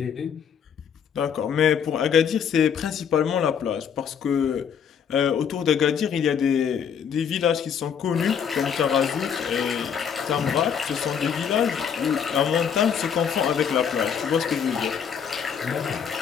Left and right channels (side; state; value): right; quieter; 7.6 dB